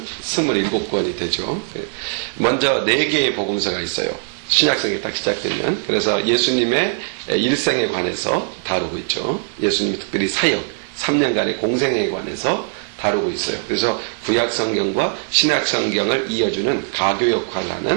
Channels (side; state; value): left; silent; digital silence